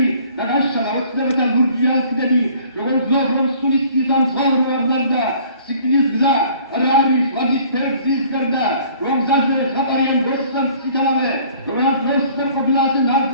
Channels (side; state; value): both; inverted; correlation -0.54